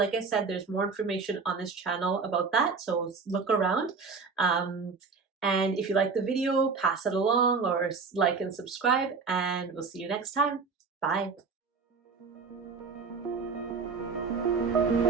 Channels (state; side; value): quieter; left; 4.9 dB